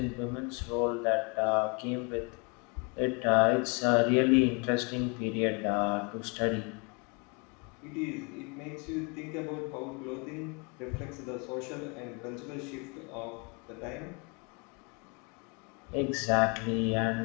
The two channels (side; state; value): right; quieter; 32.2 dB